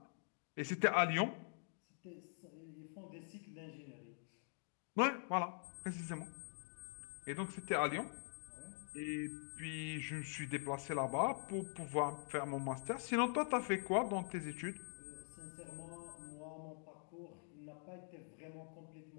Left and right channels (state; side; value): silent; right; digital silence